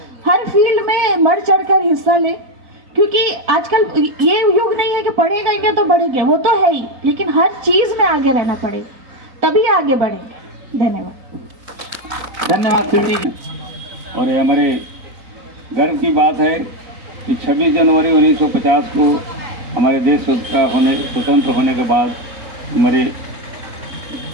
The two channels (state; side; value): late; left; 4.0 ms